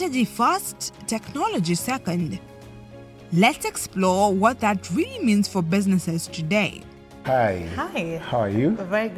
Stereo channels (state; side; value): identical; both; correlation 1.00